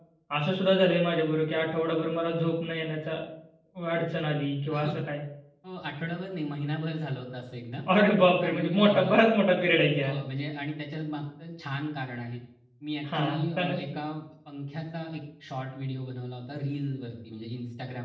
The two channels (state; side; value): identical; both; correlation 1.00